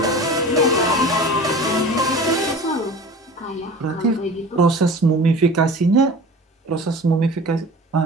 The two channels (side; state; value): both; normal; correlation 0.38